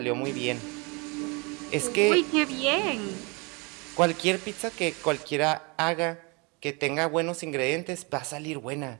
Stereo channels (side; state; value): left; quieter; 29.8 dB